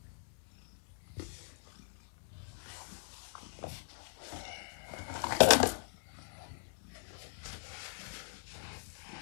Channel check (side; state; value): right; silent; digital silence